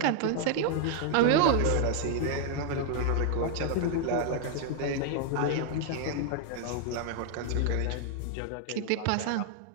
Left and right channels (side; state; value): both; different; correlation 0.00